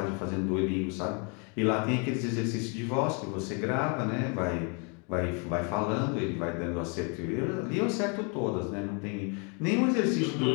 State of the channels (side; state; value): right; quieter; 35.5 dB